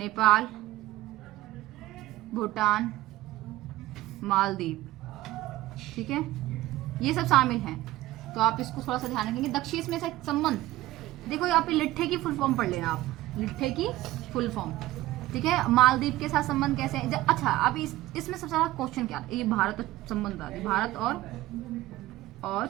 भूटान, मालदीव। ठीक है, ये सब शामिल हैं, तो आप इसको थोड़ा सा ध्यान रखेंगे। दक्षेश में से संबंध देखो, यहाँ पे लिट्ठे की फुल फॉर्म पढ़ लेना आप, लिट्ठे की फुल फॉर्म। ठीक है, मालदीव के साथ संबंध कैसे है। अच्छा अब इसमें सबसे ज्यादा क्वेश्चन क्या, ये भारत संबंध आ, भारत और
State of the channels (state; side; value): quieter; left; 16.7 dB